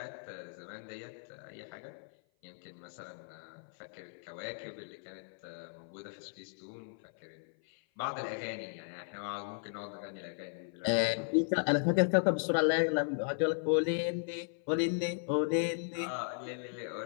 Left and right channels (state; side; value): silent; right; 54 dB below the other